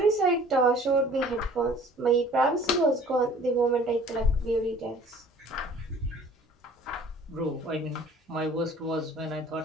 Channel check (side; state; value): both; normal; correlation 0.50